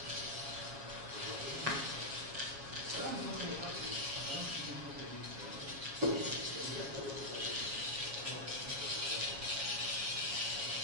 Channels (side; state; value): left; late; 7.3 ms